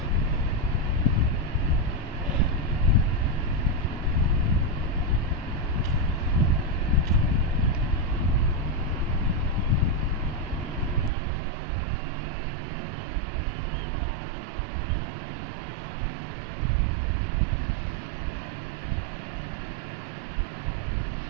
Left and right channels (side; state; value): left; drops out; at 11.1 s